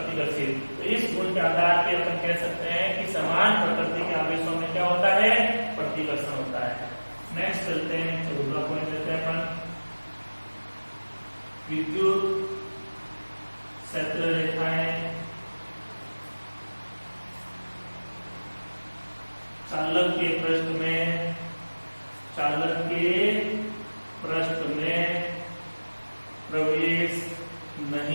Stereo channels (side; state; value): both; inverted; correlation -1.00